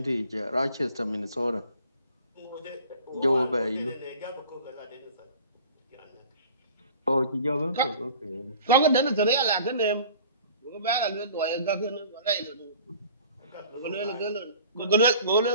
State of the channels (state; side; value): inverted; both; correlation -0.47